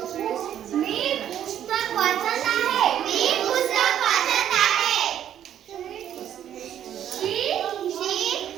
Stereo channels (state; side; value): quieter; left; 10.4 dB